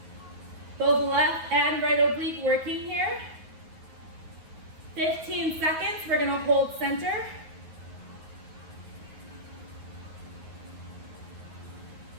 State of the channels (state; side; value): late; left; 9.4 ms